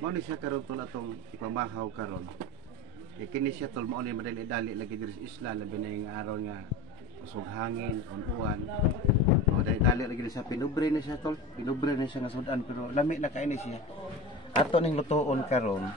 siya karon tol atong ipamahaw karon. Kini siya tol mauni madali-dali lagi diri sa isla labi na yung araw nga usog hangin, uwan. O dali lagi sa pinubre na siya tol. Pinubre na siya nga sudan pero lami na kaini siya. Ato ning lutoon karon.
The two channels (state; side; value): normal; both; correlation 0.30